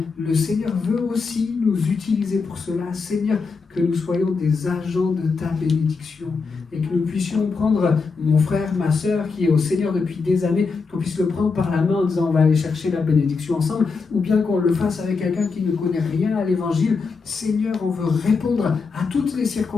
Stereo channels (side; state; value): right; quieter; 4.7 dB